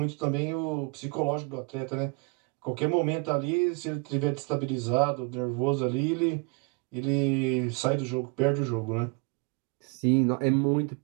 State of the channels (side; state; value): left; quieter; 30.7 dB